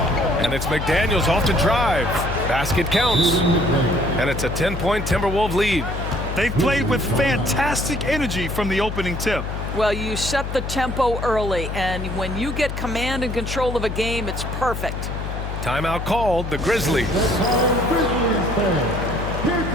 And it's McDaniels off to drive. Basket counts. And it's a 10-point Timberwolves lead. They've played with fantastic energy from the opening tip. Well, you set the tempo early, and when you get command and control of a game, it's perfect. Timeout called, the Grizzlies. Grizzlies fans, here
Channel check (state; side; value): noise; left; hum, 5 dB below the sound